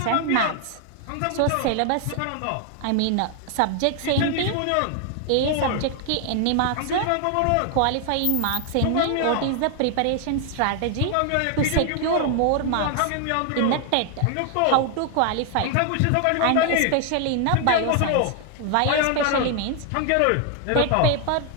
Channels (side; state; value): both; different; correlation 0.00